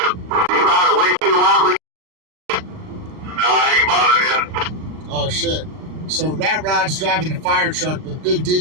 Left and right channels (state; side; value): late; left; 38 ms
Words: Oh shit. So Rat Rod's driving the fire truck, but Big D